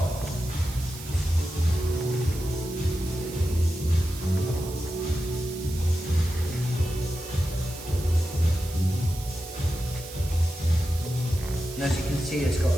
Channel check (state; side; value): noise; right; hiss, 14 dB below the sound